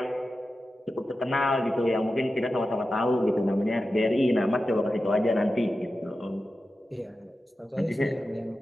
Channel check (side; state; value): both; normal; correlation 0.92